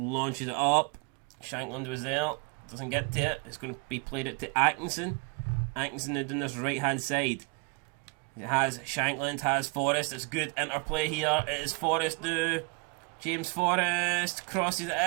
it up. Shankland was there. Doesn't get to it. It's going to be played it to Atkinson. Atkinson now doing this right hand side. It has Shankland, has Forrest. It's good interplay here. It is Forrest now. James Forrest crosses it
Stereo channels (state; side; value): quieter; left; 29.2 dB